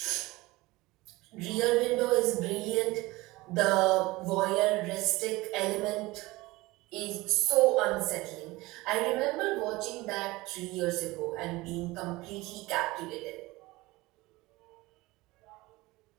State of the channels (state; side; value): quieter; left; 20.7 dB